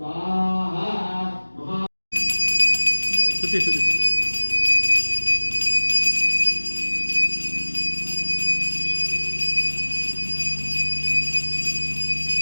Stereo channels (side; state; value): both; inverted; correlation -1.00